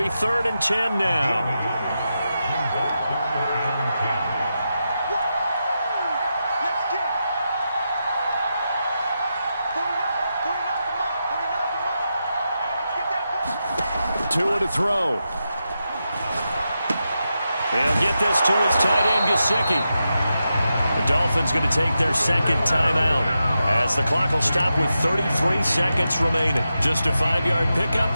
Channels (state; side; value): inverted; both; correlation -0.88